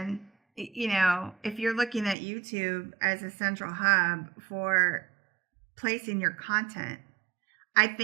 if you're looking at YouTube as a central hub for placing your content, I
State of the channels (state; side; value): drops out; left; at 2.1 s